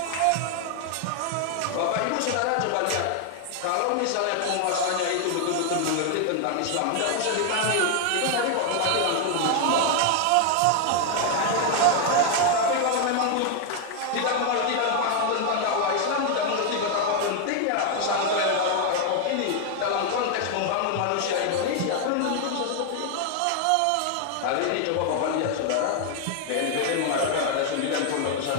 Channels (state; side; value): different; both; correlation 0.00